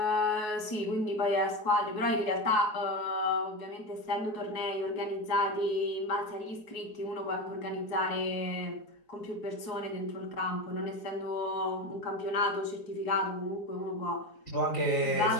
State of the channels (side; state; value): right; late; 4.7 ms